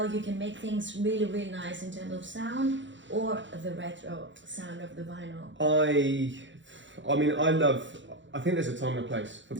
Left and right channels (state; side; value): late; left; 0.54 ms